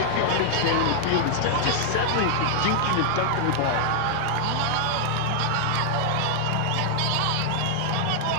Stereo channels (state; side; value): different; both; correlation -0.01